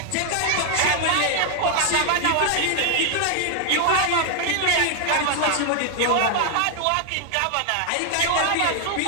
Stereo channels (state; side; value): different; both; correlation 0.00